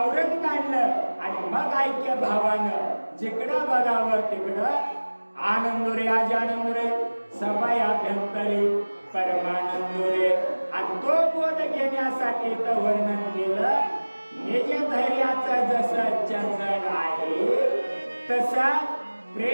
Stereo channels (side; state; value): both; inverted; correlation -1.00